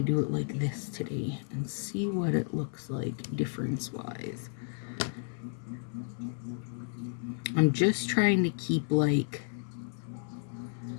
do it like this today and see what it looks like difference-wise. I'm just trying to keep like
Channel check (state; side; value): silent; right; 56 dB below the other